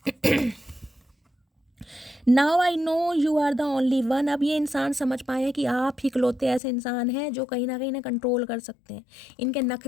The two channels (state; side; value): drops out; right; at 6.6 s